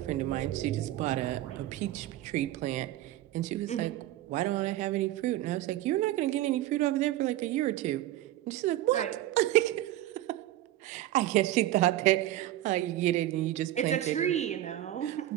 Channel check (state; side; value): quieter; left; 14.3 dB